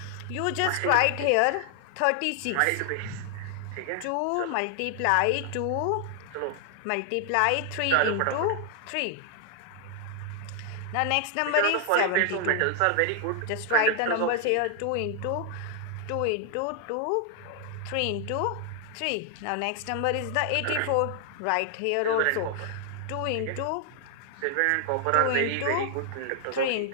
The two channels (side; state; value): both; different; correlation 0.00